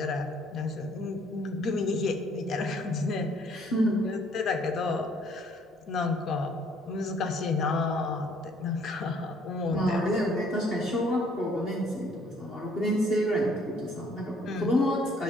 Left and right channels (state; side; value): normal; both; correlation 0.62